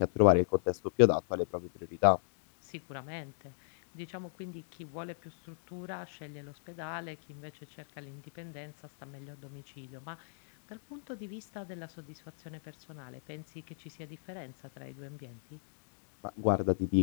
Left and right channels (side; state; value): right; silent; digital silence